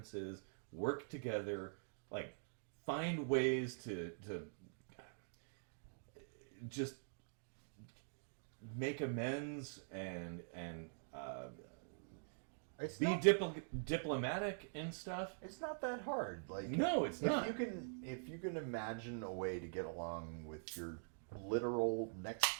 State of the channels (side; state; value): left; silent; digital silence